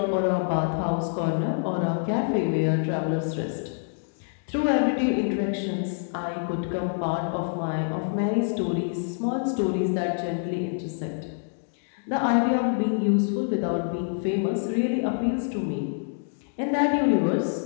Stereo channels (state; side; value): silent; right; digital silence